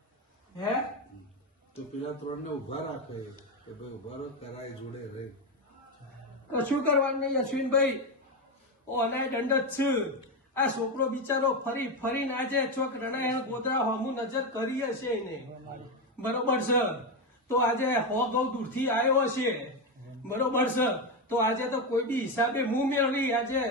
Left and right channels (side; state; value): both; normal; correlation 0.11